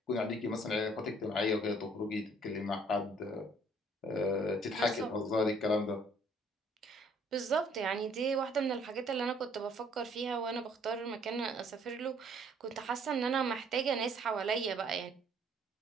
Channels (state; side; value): normal; both; correlation 0.61